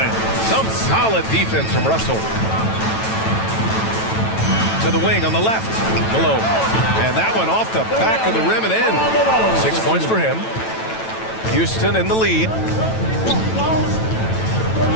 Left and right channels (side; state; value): right; late; 9.1 ms